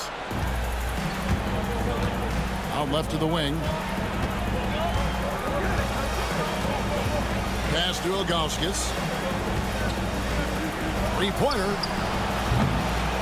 Out left to the wing. Pass to Ilgauskas. 3-pointer.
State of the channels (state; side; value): identical; both; correlation 1.00